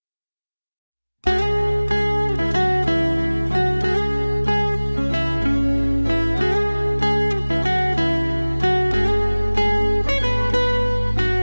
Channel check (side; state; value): both; inverted; correlation -1.00